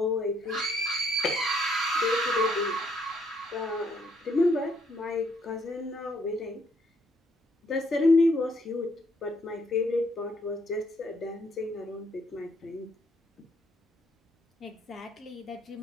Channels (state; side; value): normal; both; correlation 0.70